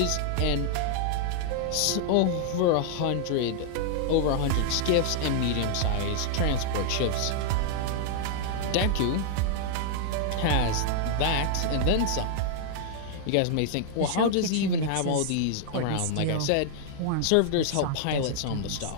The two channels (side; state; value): both; different; correlation -0.01